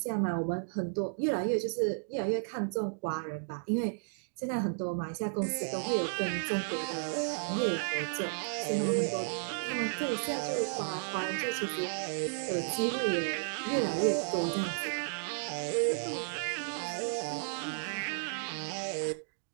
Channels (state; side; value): silent; left; digital silence